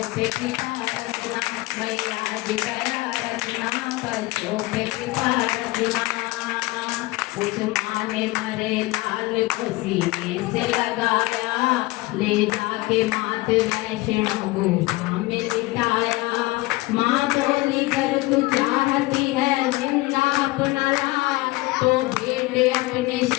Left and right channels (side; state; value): right; quieter; 20.8 dB